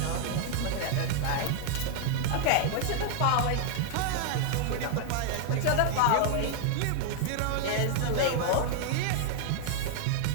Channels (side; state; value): both; different; correlation 0.00